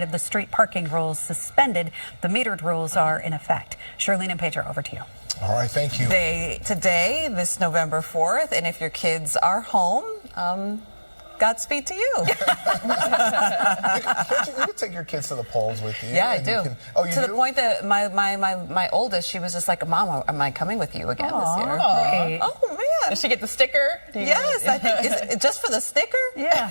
of the street parking rules suspended. The metered rules are in effect. Charlene and Pedro, over to you. All right, thank you. Today, this November 4th, and if your kids are home, Godspeed to you. You can take your kids to the polls with you. Yeah, I do. You to do? the point that my oldest, she was just like, Mom, am I coming with you again this year? Great. Oh, man. Does she get the sticker? Yes, I think. Is it just for the sticker? Yeah.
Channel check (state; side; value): inverted; both; correlation -1.00